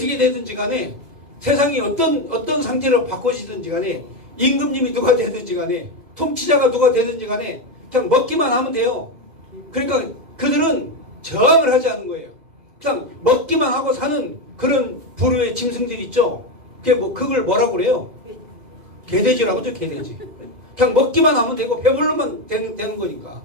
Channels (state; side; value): late; left; 2.0 ms